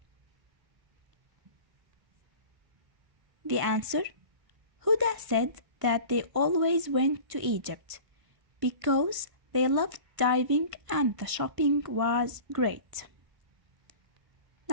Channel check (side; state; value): left; late; 1.5 ms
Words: The answer, Huda said that they always went to Egypt because they loved diving and the shopping was great.